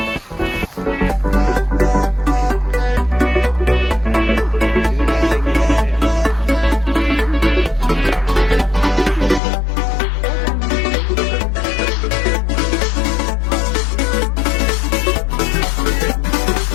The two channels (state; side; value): drops out; right; at 9.4 s